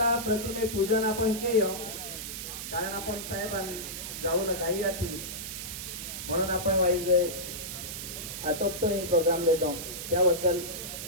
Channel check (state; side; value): noise; right; hiss, 7 dB below the sound